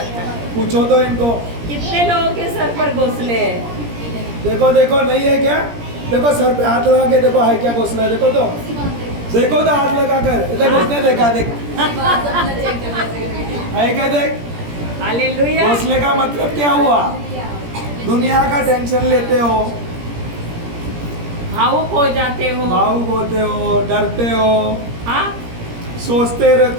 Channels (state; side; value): late; left; 17 ms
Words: पूछो तो इनको, कितने लोगों के सर पर घोंसले हैं? देखो देखो, नहीं है क्या? देखो सर पे हाथ लगा के देखो, है क्या घोंसला? देखो तो, देखो तो हाथ लगा कर देखो, उसने देखा, देख है क्या? देख, हालेलुया। घोंसले का मतलब क्या हुआ? दुनिया का टेंशन लेते हो, भावुक हो जाते हो, भावुक होते हो, डरते हो, हाँ। सोचते